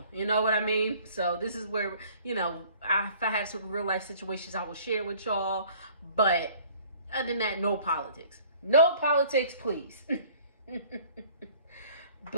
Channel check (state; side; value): inverted; both; correlation -0.53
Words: You know what I mean? So this is where, you know, if I have some real life situations, I will share with y'all, but other than that, no politics. No politics, please.